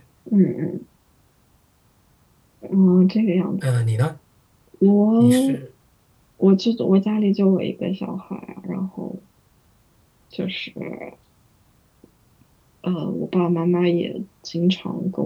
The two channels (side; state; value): both; identical; correlation 1.00